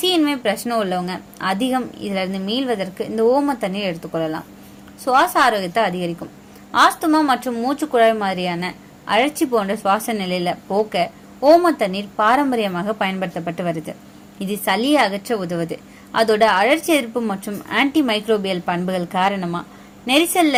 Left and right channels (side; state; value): both; identical; correlation 1.00